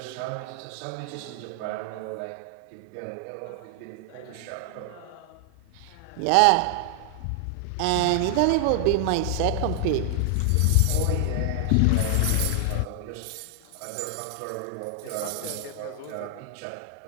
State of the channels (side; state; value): both; different; correlation 0.00